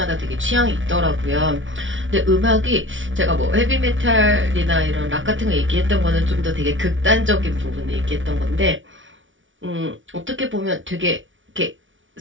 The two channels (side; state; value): left; late; 0.56 ms